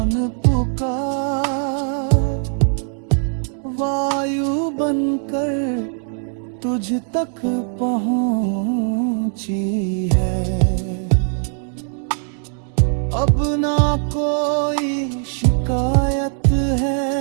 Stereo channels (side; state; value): left; silent; 55 dB below the other